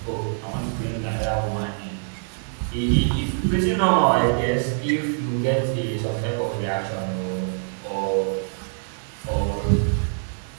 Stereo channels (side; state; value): left; silent; 62 dB below the other